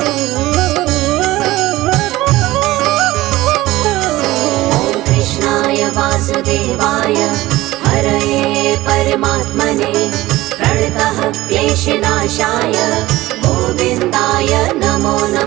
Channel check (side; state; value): left; quieter; 17.6 dB